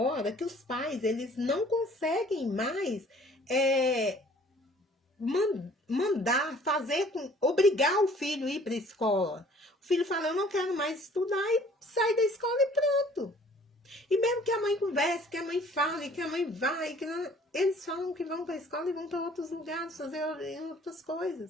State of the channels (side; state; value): both; normal; correlation 0.54